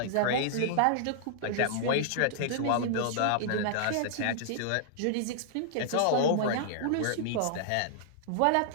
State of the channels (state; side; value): different; both; correlation -0.01